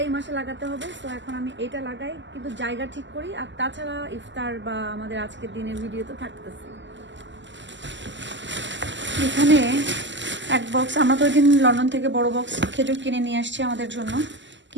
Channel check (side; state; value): left; late; 0.54 ms